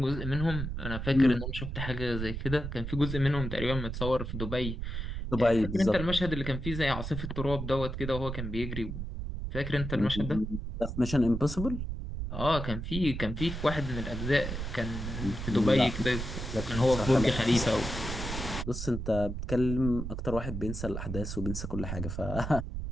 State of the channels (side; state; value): right; noise; rumble, 5 dB below the sound